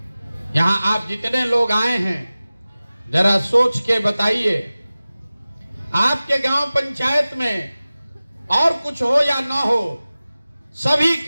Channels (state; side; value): inverted; both; correlation -0.97